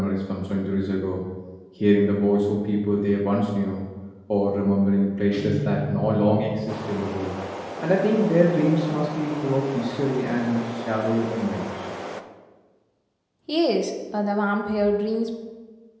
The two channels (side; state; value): both; identical; correlation 1.00